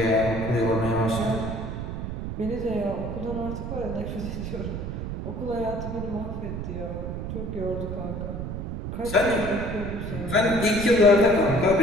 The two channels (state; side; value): noise; right; rumble, 5 dB below the sound